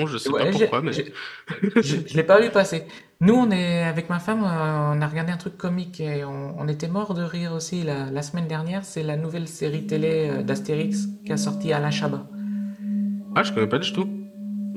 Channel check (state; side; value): identical; both; correlation 1.00